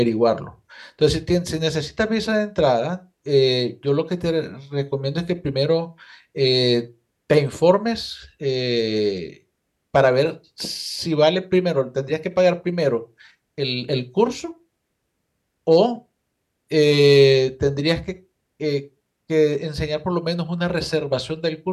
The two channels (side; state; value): both; identical; correlation 1.00